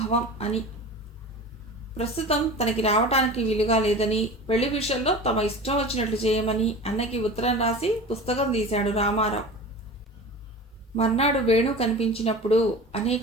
అని. ప్రస్తుతం తనకి రావటానికి వీలుగా లేదని, పెళ్లి విషయంలో తమ ఇష్టం వచ్చినట్లు చేయమని అన్నకి ఉత్తరం రాసి పుస్తకం తీశాడు రామారావు. మర్నాడు వేణు కనిపించినప్పుడు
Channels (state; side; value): normal; both; correlation 0.35